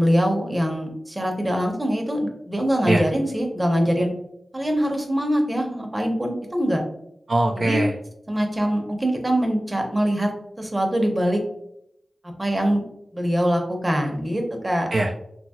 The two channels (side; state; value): both; normal; correlation 0.96